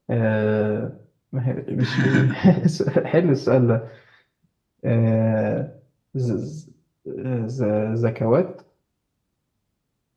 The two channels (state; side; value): identical; both; correlation 1.00